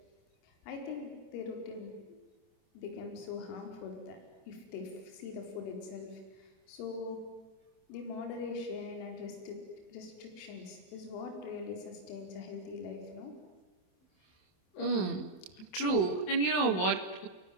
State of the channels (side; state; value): right; late; 27 ms